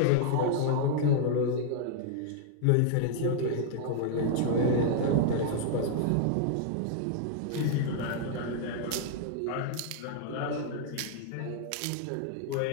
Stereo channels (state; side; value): different; both; correlation 0.00